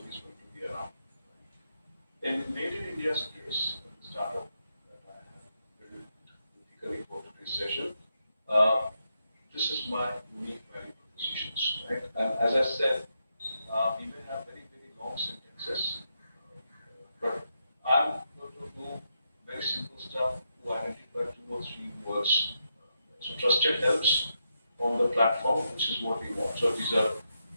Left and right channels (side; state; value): both; inverted; correlation -0.83